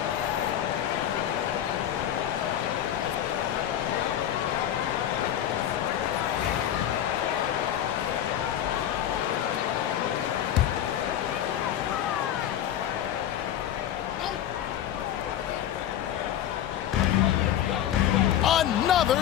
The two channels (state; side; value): quieter; right; 10.9 dB